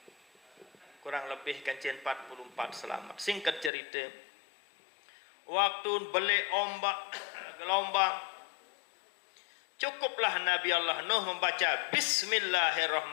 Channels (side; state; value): right; drops out; at 3.7 s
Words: Kurang lebih kance 44 selamat. Singkat cerita, waktu belik ombak gelombang, cukuplah Nabi Allah Nuh membaca